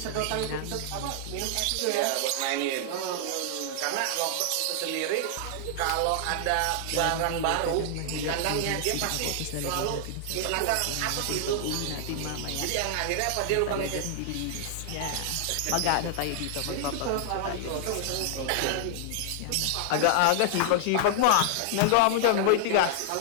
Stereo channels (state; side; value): different; both; correlation -0.01